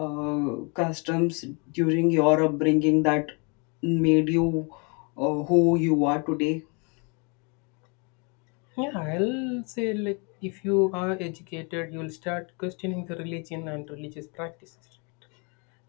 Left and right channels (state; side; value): quieter; right; 33.4 dB